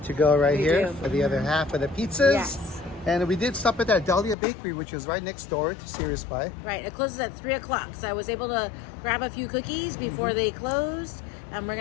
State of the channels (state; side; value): drops out; right; at 4.4 s